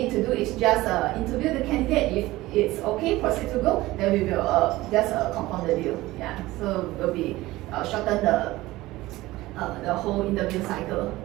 to do is just interview the candidate. If it's okay, proceed to go, then we will just compound the deal. Yeah, so will be shorten the whole interview cycle.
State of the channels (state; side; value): quieter; left; 18.2 dB